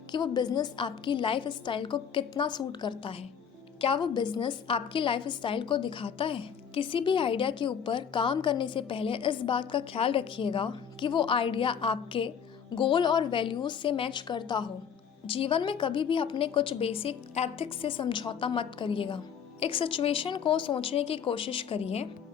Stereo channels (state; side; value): quieter; right; 7.4 dB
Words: कि वो बिजनेस आपकी लाइफ स्टाइल को कितना सूट करता है। क्या वो बिजनेस आपकी लाइफ स्टाइल को दिखाता है। किसी भी आइडिया के ऊपर काम करने से पहले इस बात का ख्याल रखिएगा कि वो आइडिया आपके गोल और वैल्यूज से मैच करता हो। जीवन में कभी भी अपने कुछ बेसिक एथिक्स से समझौता मत करिएगा। एक सिचुएशन को सोचने की कोशिश करिए।